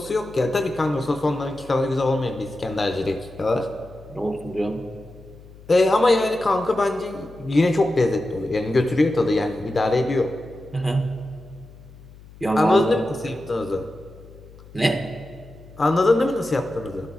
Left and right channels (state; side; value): noise; left; hum, 21 dB below the sound